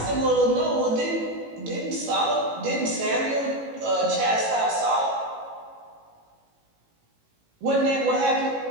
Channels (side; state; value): left; late; 18 ms